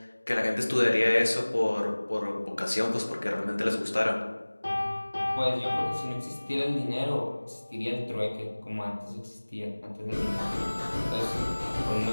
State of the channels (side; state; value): both; inverted; correlation -1.00